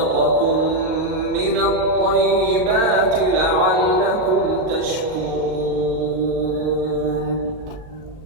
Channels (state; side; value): late; left; 38 ms